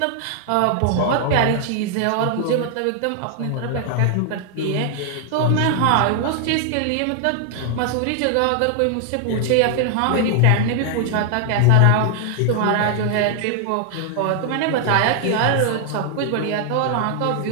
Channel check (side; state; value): both; different; correlation 0.00